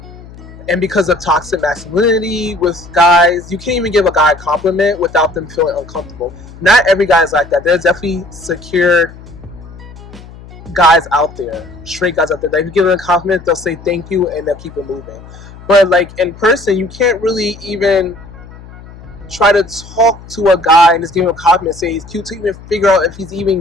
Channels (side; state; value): left; noise; hum, 18 dB below the sound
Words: and because of toxic masculinity with guys. You can't even give a guy a compliment without them feeling uncomfortable. Not every guy is like that. There's definitely secure guys out there, straight guys out there. Like, if you give them a compliment, they'll say thank you and they'll keep it moving. But like in person, you can't really even try to talk to a guy and just give him a compliment, say he's cute, to even figure out if he's